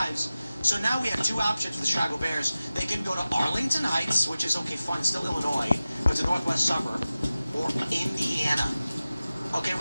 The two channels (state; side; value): inverted; both; correlation -0.96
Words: So now we have two options for the Chicago Bears. They can go to Arlington Heights, which is, okay, fine, still Illinois, but it's a northwest suburb, or Indiana. Okay,